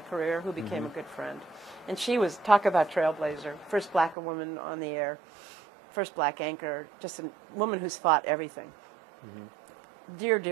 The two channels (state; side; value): drops out; left; at 4.2 s